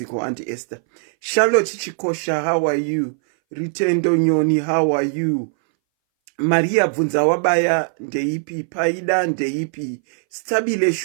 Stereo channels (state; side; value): silent; left; 62 dB below the other